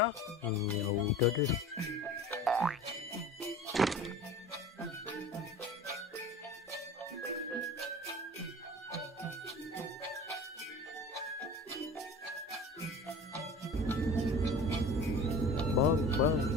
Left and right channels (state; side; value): normal; both; correlation 0.39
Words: Ya udah deh. Bang,